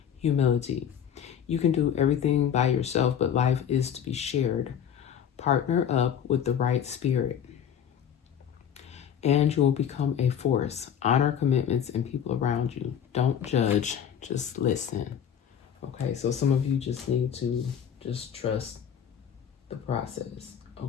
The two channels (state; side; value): quieter; right; 8.7 dB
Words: humility. You can do everything by yourself, but life is to be shared. Partner up with the right spirit, and you will become a force. Honor commitments and people around you. Don't judge, just listen. Okay, so some of you just need to just trust the process.